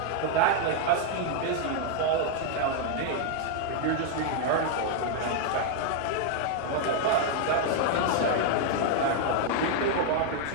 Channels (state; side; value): different; both; correlation 0.00